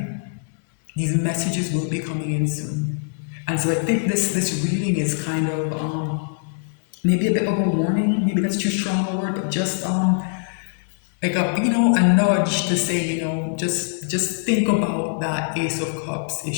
These messages will be coming in soon. And so I think this reading is kind of maybe a bit of a warning. Maybe that's too strong a word, but just like a nudge to say, just think about that Ace of Cups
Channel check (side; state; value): right; silent; digital silence